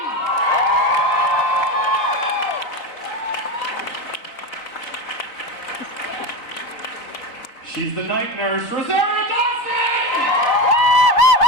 She's the night nurse, Rosario Dawson!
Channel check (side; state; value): right; late; 4.2 ms